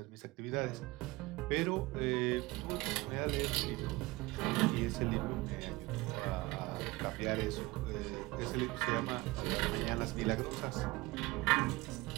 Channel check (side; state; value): left; quieter; 21.4 dB